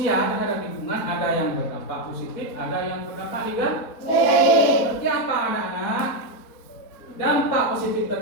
terhadap lingkungan ada yang berdampak positif, ada yang berdampak negatif. Seperti apa anak-anak? Dampak positif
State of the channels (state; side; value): late; right; 4.2 ms